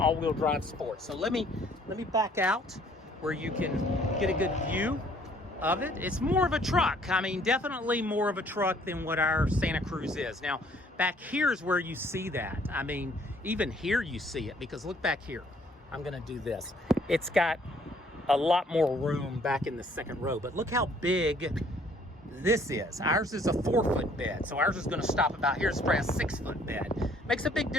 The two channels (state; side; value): normal; both; correlation 0.61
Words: drive sport. So let me back out where you can get a good view of it. It's more of a truck. I mean, definitely more of a truck than what our Santa Cruz is. Now, back here is where you see that. I mean, even here you see it, because look back here. I'm gonna do this. It's got a lot more room back in the second row, but look how big this is. Ours is a 4-foot bed, so ours is gonna stop about here. It's probably a 6-foot bed. Makes a big